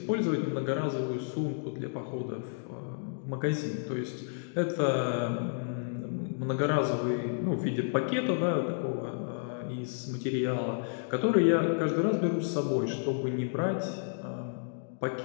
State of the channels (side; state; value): right; silent; digital silence